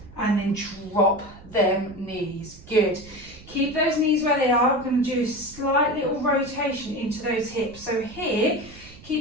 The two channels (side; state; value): right; noise; rumble, 20 dB below the sound